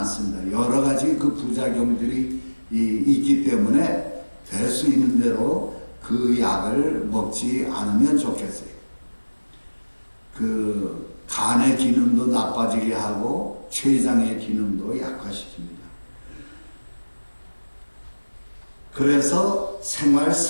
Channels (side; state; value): both; inverted; correlation -1.00